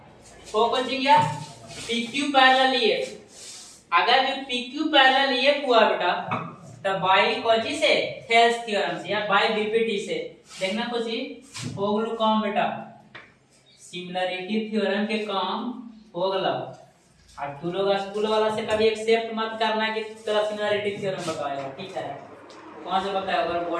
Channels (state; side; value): identical; both; correlation 1.00